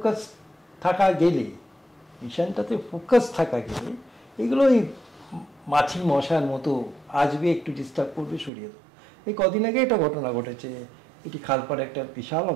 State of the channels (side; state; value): left; drops out; at 8.5 s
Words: ফোকাস থাকা গেলে এগুলো ওই মাছি মশার মতো আসবে, একটু ডিস্টার্ব করবে, সরিয়ে দেবো। এই কদিন আগে একটা ঘটনা ঘটেছে, এটি খালপাড়ে একটা বিশাল